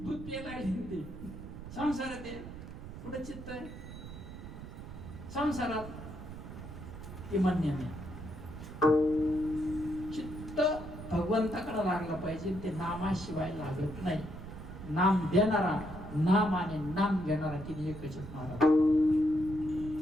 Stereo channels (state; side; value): noise; right; rumble, 11 dB below the sound